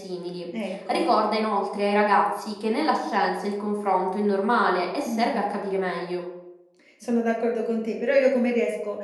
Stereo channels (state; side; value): identical; both; correlation 1.00